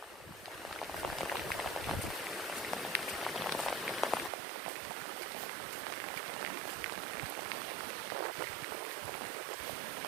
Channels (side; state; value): left; drops out; at 4.3 s